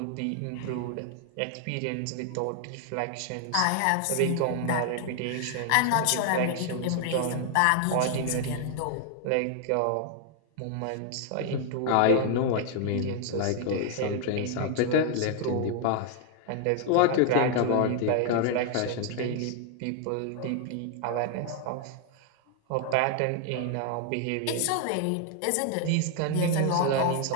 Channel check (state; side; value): different; both; correlation 0.00